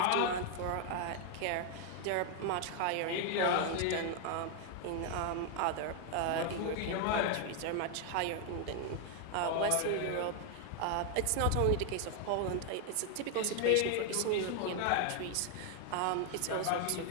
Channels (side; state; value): both; different; correlation 0.00